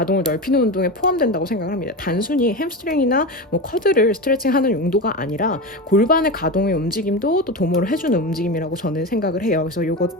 넓히는 운동에 포함된다고 생각을 합니다. 단순히 햄스트링이나 뭐 커드를 스트레칭하는 용도가 아니라 골반의 가동의 움직임도 또 도모를 해주는 움직임이라고 저는 생각을 해요. 그래서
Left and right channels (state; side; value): normal; both; correlation 0.22